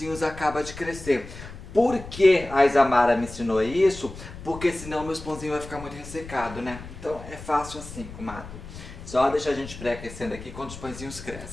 acabam de crescer. Por que a Isamara me ensinou isso? Porque senão meus pãozinhos vai ficar muito ressecado, né? Então é fácil assim, comadre. Só deixa a gente pré-aquecendo aqui quando os pãezinhos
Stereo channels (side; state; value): left; noise; rumble, 13 dB below the sound